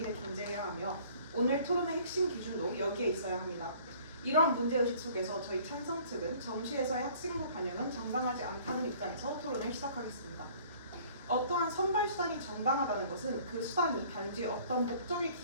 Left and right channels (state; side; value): inverted; both; correlation -0.53